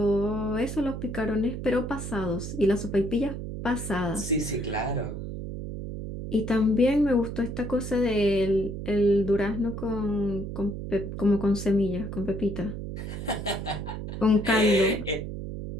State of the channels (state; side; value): noise; right; hum, 7 dB below the sound